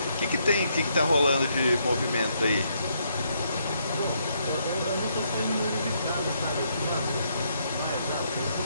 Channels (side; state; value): both; inverted; correlation -0.74